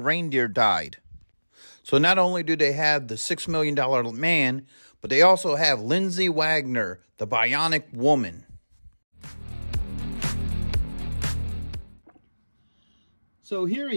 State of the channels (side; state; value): both; inverted; correlation -1.00